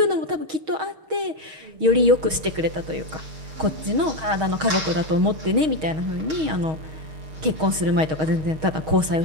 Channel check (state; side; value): late; left; 6.4 ms